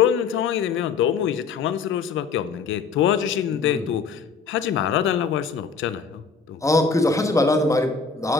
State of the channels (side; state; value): right; quieter; 5.2 dB